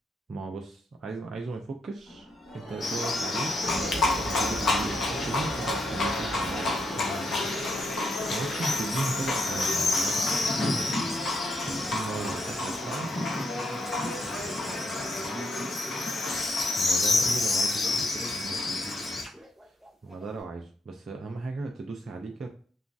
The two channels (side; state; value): both; normal; correlation 0.77